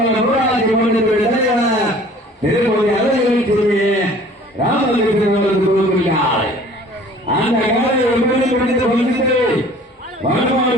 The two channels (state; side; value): normal; both; correlation 0.50